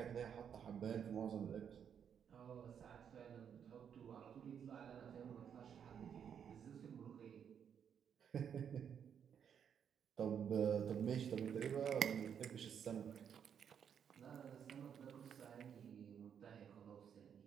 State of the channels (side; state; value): left; quieter; 8.0 dB